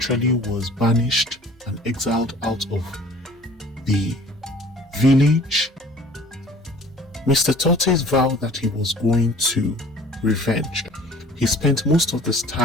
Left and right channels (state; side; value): normal; both; correlation 0.49